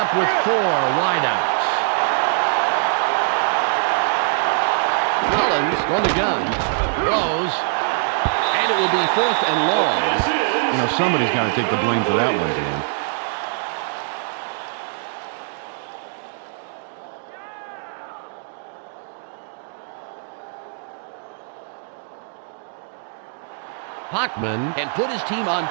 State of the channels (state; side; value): silent; left; digital silence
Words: with 4 wideouts. Collins on the gun. Throws. And it will be 4th and long. You know, somebody's got to take the blame for that one, Dan. Hockman can put his team on